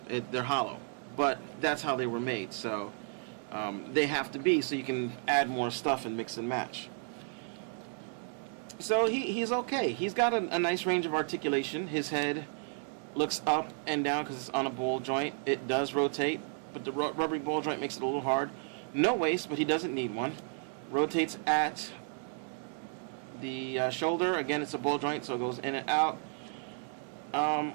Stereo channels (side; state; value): left; silent; 56 dB below the other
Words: They're hollow. But that's how they were made, so they have to be so you can add more stuff and mix and match. So he's okay. He's got a nice range of articulation. His head looks up and down because it's on a ball joint. It does rotate, but the rubbery ball joint makes it a little hard. No waist, but he doesn't need one. Rotates at the shoulder. Again, it's a ball joint, so it goes in and out.